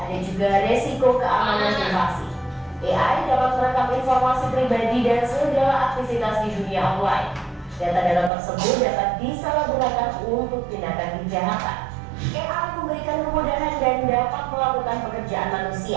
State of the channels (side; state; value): left; drops out; at 8.3 s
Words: juga resiko keamanan privasi. AI dapat merekam informasi pribadi dan segala aktivitas di dunia online. Data-data tersebut dapat disalahgunakan untuk tindakan kejahatan. AI memberikan kemudahan dan dapat melakukan pekerjaan